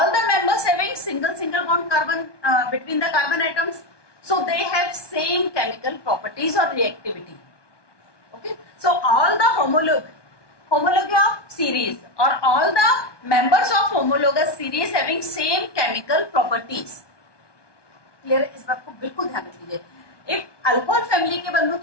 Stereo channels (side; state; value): right; late; 1.2 ms